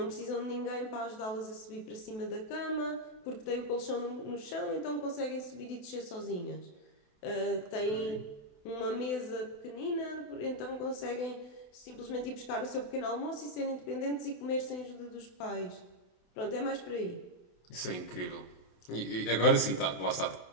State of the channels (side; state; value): right; late; 27 ms